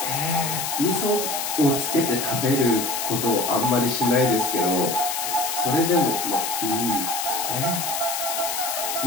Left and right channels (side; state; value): left; noise; hiss, 2 dB below the sound